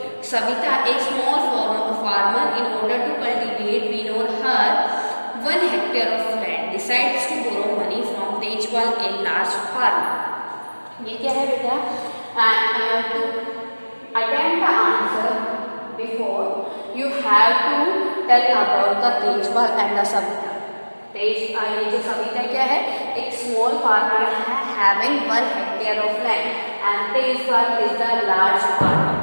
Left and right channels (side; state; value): both; inverted; correlation -1.00